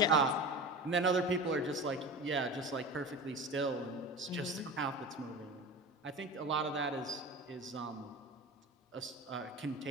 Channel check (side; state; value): both; normal; correlation 0.31